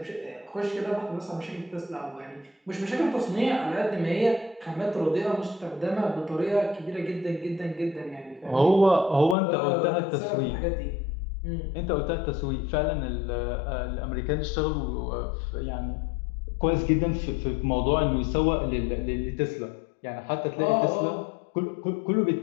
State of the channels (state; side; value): drops out; right; at 9.3 s